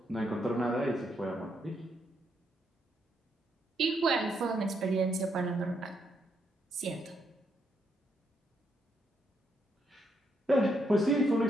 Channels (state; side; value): normal; both; correlation 0.77